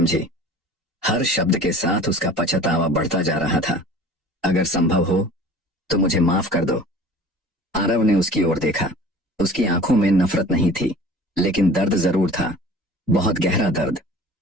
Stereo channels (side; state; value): both; normal; correlation 0.44